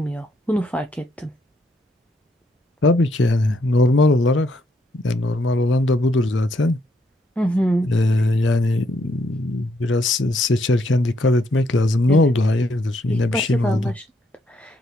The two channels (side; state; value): both; normal; correlation 0.74